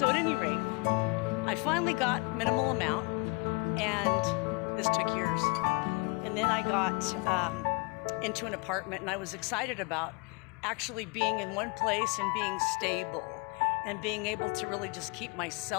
at any rate, I finally got minimal amount, and this took years. And then I got into an apartment, and I was excited about actually being in one place and being stable and being able to really just keep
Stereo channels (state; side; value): quieter; right; 29.3 dB